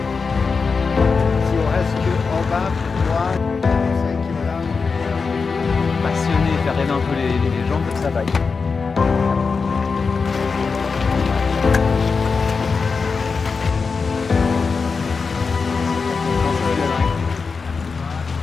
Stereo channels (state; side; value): quieter; right; 4.9 dB